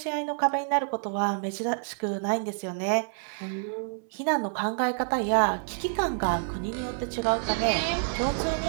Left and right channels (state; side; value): silent; left; 59 dB below the other